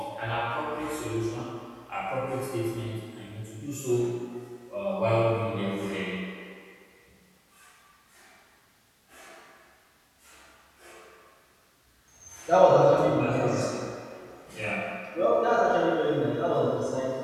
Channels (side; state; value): both; identical; correlation 1.00